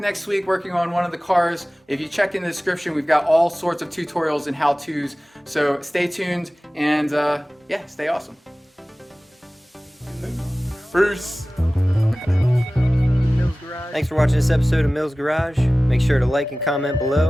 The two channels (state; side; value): normal; both; correlation 0.97